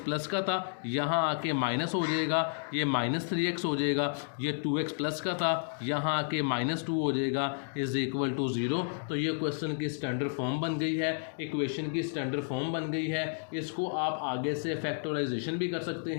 का था, यहाँ आके माइनस हो जाएगा, ये माइनस 3x हो जाएगा। ये 2x प्लस का था, यहाँ आके -2 हो जाएगा इज इक्वल टू 0। तो ये क्वेश्चन की स्टैंडर्ड फॉर्म बन गई है, इक्वेशन की स्टैंडर्ड फॉर्म बन गई है। इसको आप आगे से फैक्टराइजेशन भी कर सकते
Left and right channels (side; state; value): right; silent; digital silence